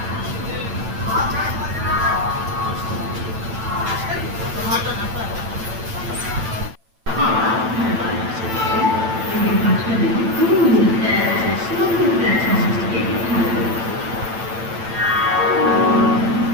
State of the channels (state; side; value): late; left; 9.0 ms